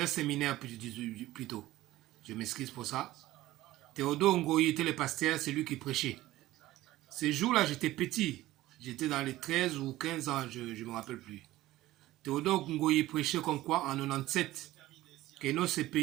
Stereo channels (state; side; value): quieter; left; 16.2 dB